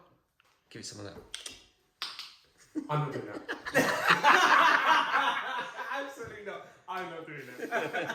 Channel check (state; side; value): identical; both; correlation 1.00